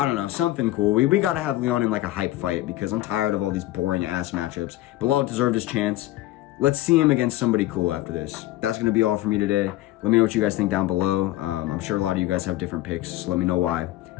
don't know, something cool. We got to have Leon in like a hype fight, because I'm tired of all these boring ass matchups. Bilal deserved his chance. Let's see him against somebody cool after this. That's going to be all for me today. Let me know what you guys think down below. I'm sure a lot of you guys have different picks, so let me know why.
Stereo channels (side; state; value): right; quieter; 16.1 dB